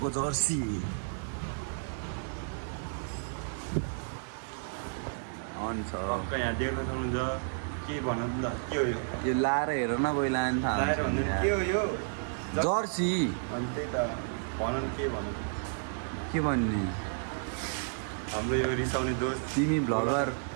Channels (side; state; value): left; silent; digital silence